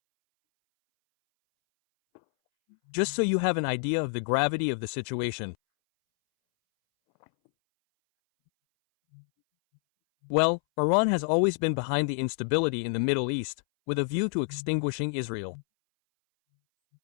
Just so you have an idea of the gravity of the situation. Well, Iran has always been behind the instability in the Middle East, with a view to extinguishing Israel.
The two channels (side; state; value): right; silent; 60 dB below the other